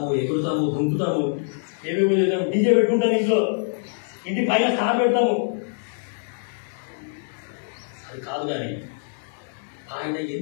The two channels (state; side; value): silent; right; 62 dB below the other